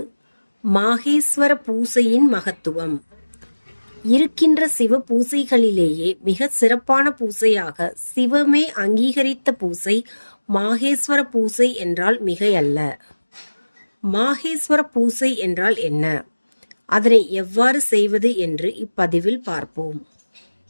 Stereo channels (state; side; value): inverted; both; correlation -1.00